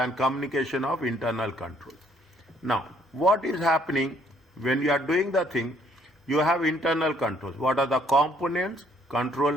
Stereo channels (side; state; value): both; normal; correlation 0.65